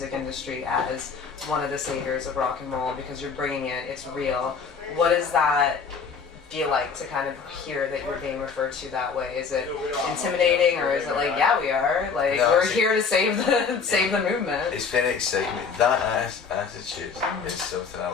industry as one of the saviors of rock and roll because you're bringing it, it's real. What does that feel like to kind of hear that you're being referred to that way? Is it intimidating, or is it like, yeah, we are, like, we're here to save the movement? It's very exciting. That attitude is something I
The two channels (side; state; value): right; quieter; 5.5 dB